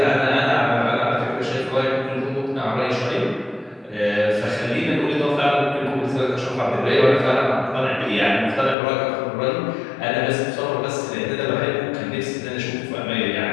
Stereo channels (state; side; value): drops out; right; at 8.8 s